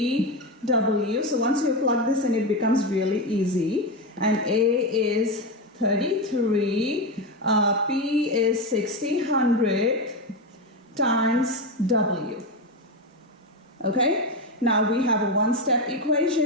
So once you plug this in, it becomes really easy. And A is 33, P is 1600 times W. Okay, now we have a one-step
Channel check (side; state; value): both; normal; correlation 0.14